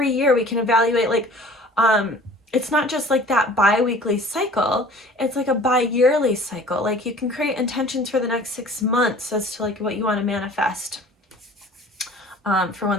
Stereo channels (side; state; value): both; normal; correlation 0.47